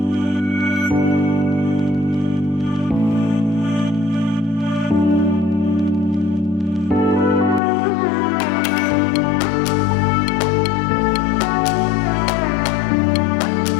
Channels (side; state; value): right; drops out; at 7.6 s